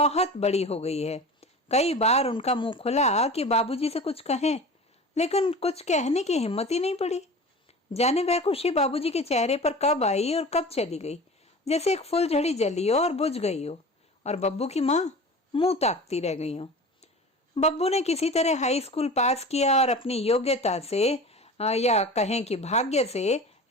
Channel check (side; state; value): both; normal; correlation 0.36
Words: बड़ी हो गई है। कई बार उनका मुंह खुला कि बाबूजी से कुछ कहें, लेकिन कुछ कहने की हिम्मत ही नहीं पड़ी। जाने वह खुशी बाबूजी के चेहरे पर कब आई और कब चली गई, जैसे एक फुलझड़ी जली हो और बुझ गई हो, और बब्बू की माँ मुंह ताकती रह गई हो। बब्बू ने किसी तरह हाई स्कूल पास किया और अपनी योग्यता से या कहें कि भाग्य से